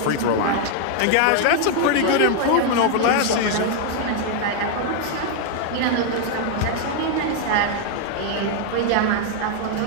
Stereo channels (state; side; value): different; both; correlation 0.00